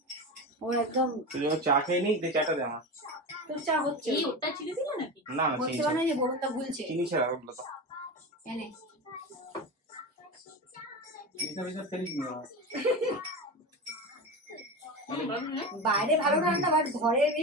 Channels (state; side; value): normal; both; correlation 0.24